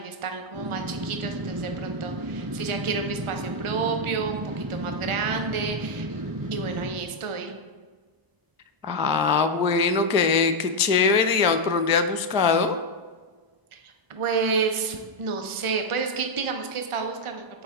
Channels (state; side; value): late; left; 1.0 ms